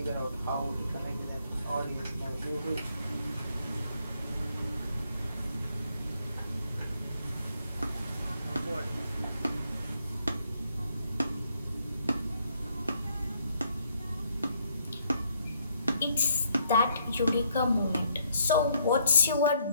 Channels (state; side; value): inverted; both; correlation -0.70